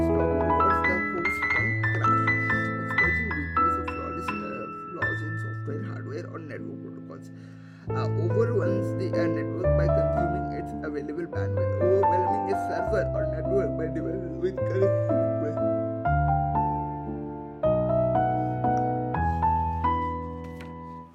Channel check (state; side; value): identical; both; correlation 1.00